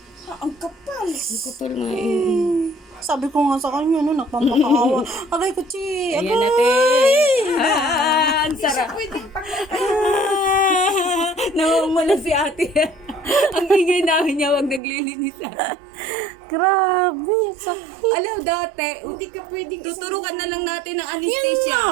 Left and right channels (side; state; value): left; drops out; at 14.8 s